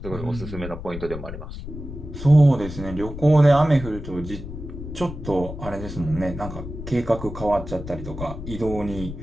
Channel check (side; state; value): left; noise; rumble, 10 dB below the sound